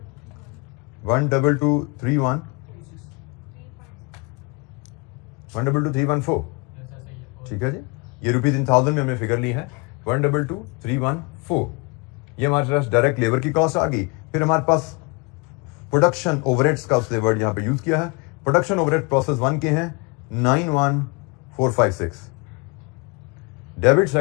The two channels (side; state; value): right; quieter; 28.5 dB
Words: 12231 122,314. ठीक है जी. ये रुपीज इन थाउजेंड में हमने फिगर ली है 122,314. ये हमारे पास डायरेक्ट लेबर की कॉस्ट आ गई. फिर हमारे पास प्रोडक्शन ओवरहेड्स का उसने वर्ड यहां पे यूज किया है. प्रोडक्शन ओवरहेड प्रोसेस 1 के हैं 91456. डेबिट